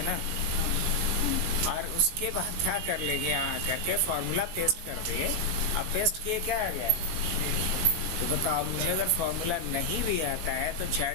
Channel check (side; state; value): left; late; 18 ms